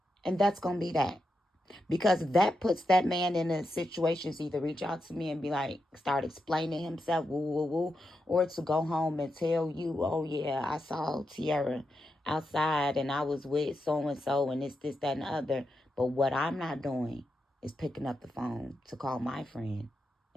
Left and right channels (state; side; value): normal; both; correlation 0.86